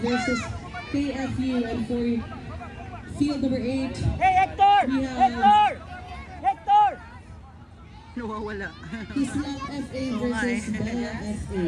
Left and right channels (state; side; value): identical; both; correlation 1.00